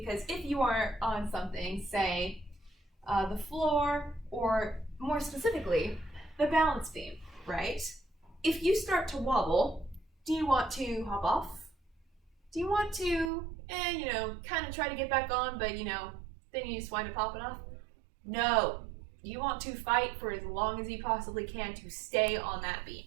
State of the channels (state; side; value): drops out; left; at 13.3 s